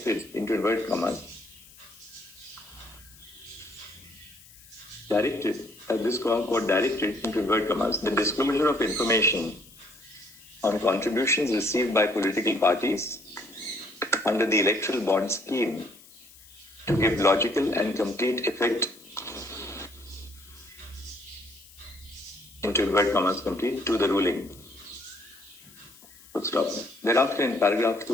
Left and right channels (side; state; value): left; noise; hiss, 23 dB below the sound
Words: into inverted commas, this court directed, into inverted commas, the disclosure of information on contributions received by political parties under the electoral bond scheme to give logical and complete effect, into inverted commas, complete, to the ruling. Full stop. Thereafter, in paragraph